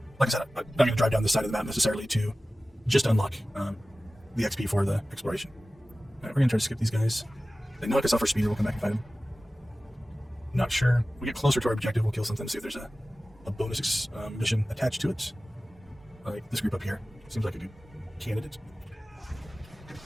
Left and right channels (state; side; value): normal; both; correlation 0.96